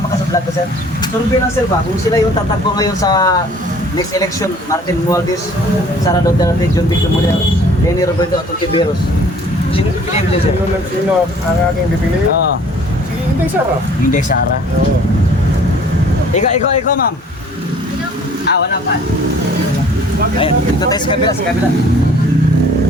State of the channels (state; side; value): normal; both; correlation 0.53